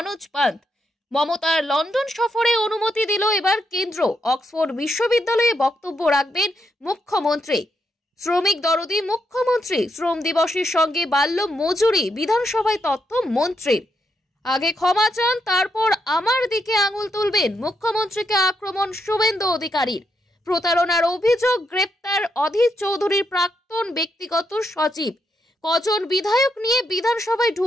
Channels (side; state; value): both; normal; correlation 0.80